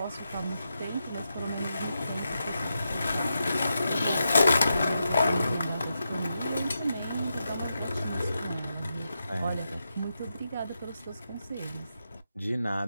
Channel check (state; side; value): inverted; both; correlation -0.87